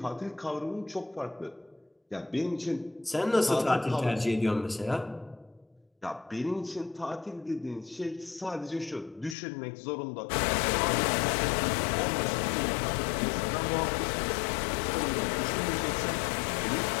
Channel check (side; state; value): right; drops out; at 9.3 s